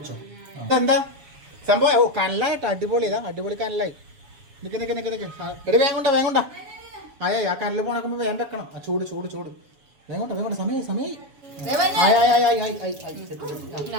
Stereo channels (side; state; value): left; late; 7.0 ms